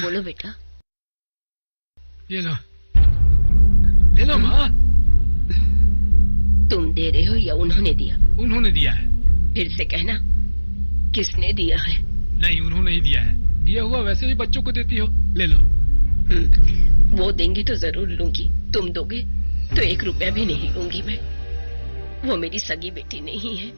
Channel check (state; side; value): inverted; both; correlation -1.00